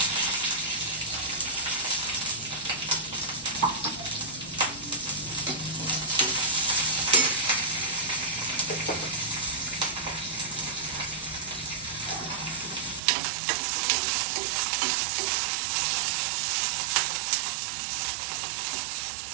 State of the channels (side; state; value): left; drops out; at 13.0 s